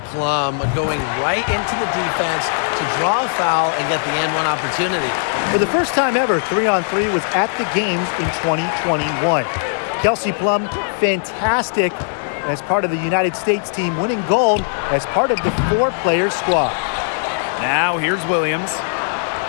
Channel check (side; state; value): right; silent; digital silence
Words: Plum, going right into the defense to draw a foul and get the and-one opportunity. For the first time ever, 3-on-3 was at the games in 2021. Kelsey Plum, fantastic as part of the United States team, winning gold as part of the 4-player squad. Now here's Williams.